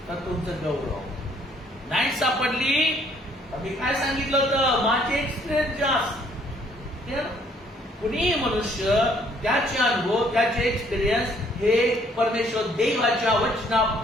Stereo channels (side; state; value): both; normal; correlation 0.63